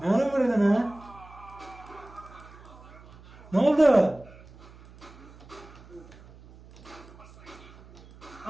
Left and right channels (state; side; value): noise; right; hum, 21 dB below the sound